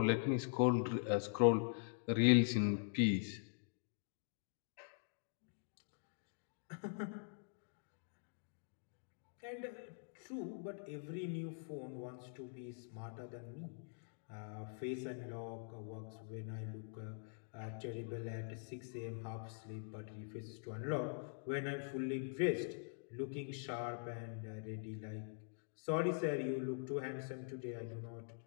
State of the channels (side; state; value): right; silent; digital silence